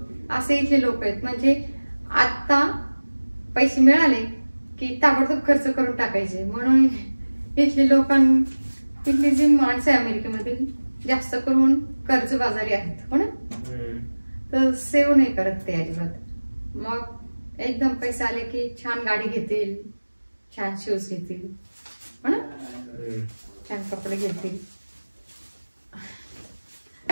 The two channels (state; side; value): inverted; both; correlation -1.00